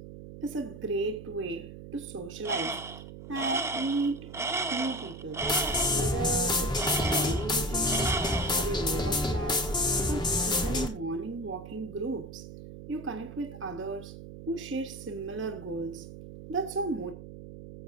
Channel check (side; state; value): right; noise; hum, 13 dB below the sound